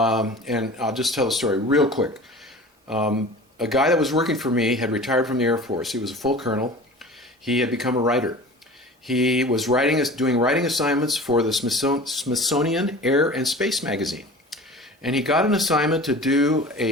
I'll just tell the story real quick. A guy that was working for me had retired from the Air Force. He was a full colonel. He had become a writer. He was doing writing assignments for the Smithsonian Air and Space magazine. And he got an assignment to do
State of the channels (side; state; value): both; normal; correlation 0.39